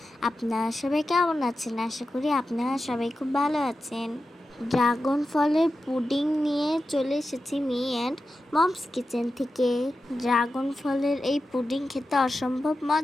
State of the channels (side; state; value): both; normal; correlation 0.92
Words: আপনারা সবাই কেমন আছেন? আশা করি আপনারা সবাই খুব ভালো আছেন। ড্রাগন ফলের পুডিং নিয়ে চলে এসেছি মি অ্যান্ড মমস কিচেন থেকে। ড্রাগন ফলের এই পুডিং খেতে অসম্ভব